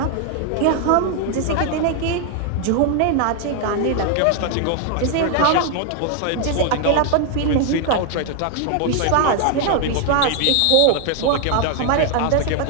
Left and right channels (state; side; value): different; both; correlation 0.00